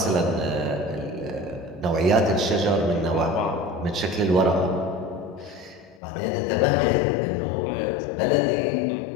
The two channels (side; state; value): right; drops out; at 6.0 s